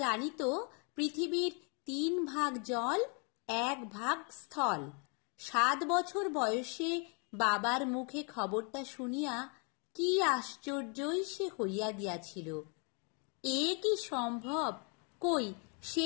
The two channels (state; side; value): quieter; right; 36.4 dB